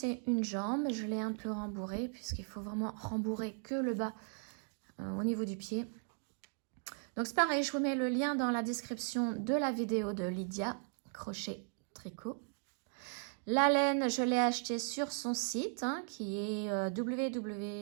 une jambe. Je l'ai un peu rembourrée puisqu'il faut vraiment rembourrer que le bas au niveau du pied. Donc c'est pareil, je vous mets le lien dans la description de la vidéo de Lydia Crochet Tricot. La laine, je l'ai achetée sur son site hein, qui est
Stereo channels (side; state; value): left; silent; 53 dB below the other